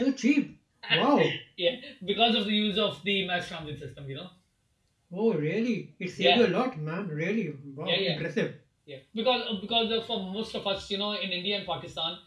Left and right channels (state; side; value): identical; both; correlation 1.00